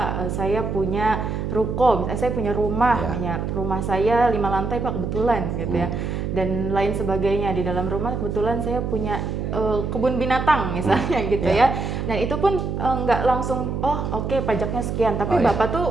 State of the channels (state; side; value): noise; right; hum, 3 dB below the sound